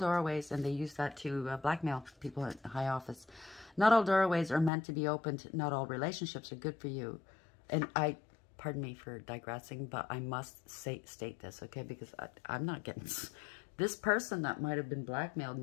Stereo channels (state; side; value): drops out; right; at 4.7 s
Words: and they use that to blackmail people at high office. Not all doorways are meant to be opened. Not all relationships are good for you. And pardon me for digressing, but I must state this, okay? Because I'm not getting this person that might have been blackmailed.